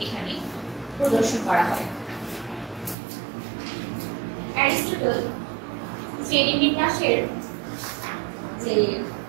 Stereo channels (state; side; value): drops out; left; at 3.0 s